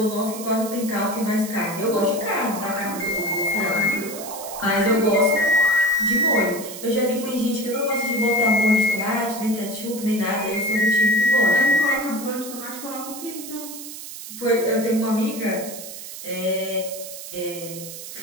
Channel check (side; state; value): right; noise; hiss, 11 dB below the sound